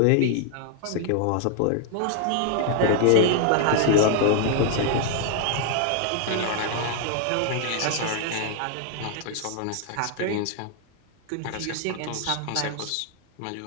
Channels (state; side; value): different; both; correlation 0.00